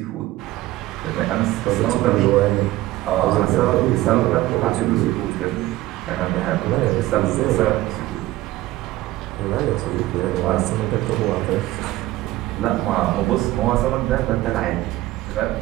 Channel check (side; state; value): left; quieter; 16.9 dB